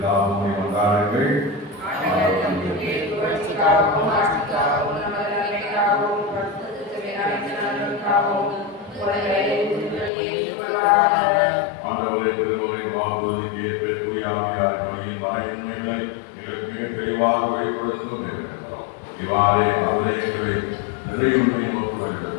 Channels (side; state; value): right; drops out; at 10.1 s